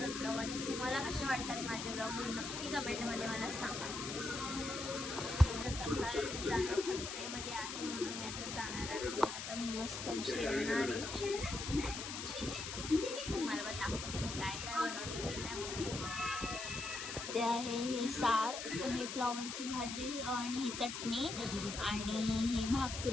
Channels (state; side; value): noise; left; hiss, 6 dB below the sound